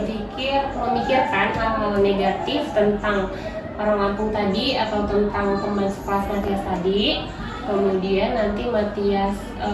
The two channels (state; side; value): identical; both; correlation 1.00